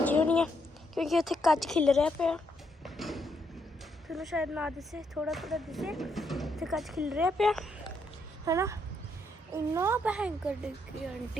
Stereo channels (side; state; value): both; normal; correlation 0.76